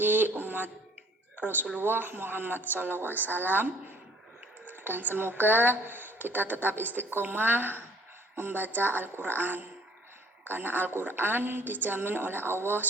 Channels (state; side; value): normal; both; correlation 0.56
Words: umat Rasulullah Muhammad SAW, dan semoga kita tetap istiqomah membaca Al-Quran, karena Al-Quran dijamin oleh Allah